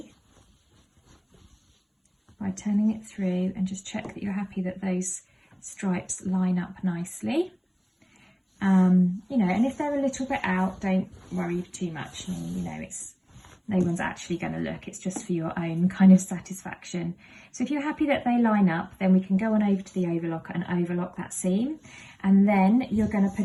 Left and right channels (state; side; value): identical; both; correlation 1.00